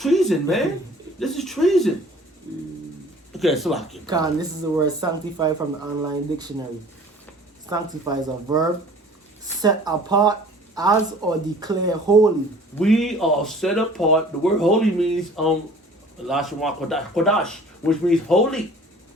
man. This is treason. Okay, Salaki. Khan, this is the word sanctify from the online dictionary. Sanctify is a verb, set apart as or declare holy. We are set apart. The word holy means Lashon Kodash, which means holy.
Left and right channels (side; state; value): both; normal; correlation 0.49